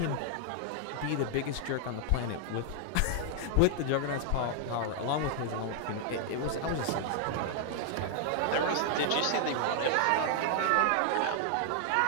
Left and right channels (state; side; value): different; both; correlation -0.01